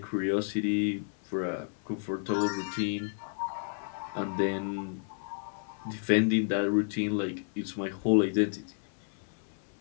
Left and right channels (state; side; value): silent; right; 57 dB below the other